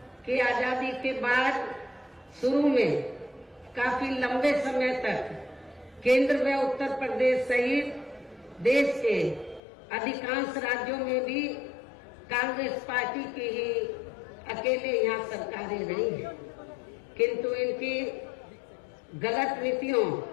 कि आजादी के बाद शुरू में काफी लंबे समय तक केंद्र व उत्तर प्रदेश सहित देश के अधिकांश राज्यों में भी कांग्रेस पार्टी की ही अकेले यहाँ सरकारें रही हैं, किंतु इनकी गलत नीतियों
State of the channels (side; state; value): right; drops out; at 9.6 s